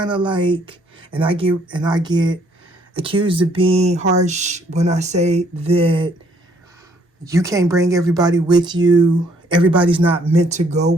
of like, and I get accused of being harsh when I say that you can't bring everybody with you. Everybody's not meant to go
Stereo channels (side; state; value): both; normal; correlation 0.65